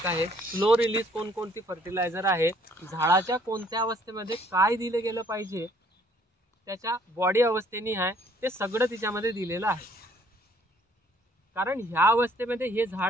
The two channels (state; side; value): normal; both; correlation 0.62